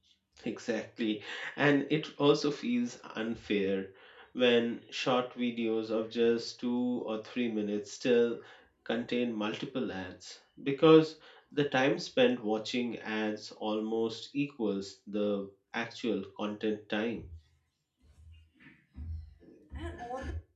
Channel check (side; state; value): both; identical; correlation 1.00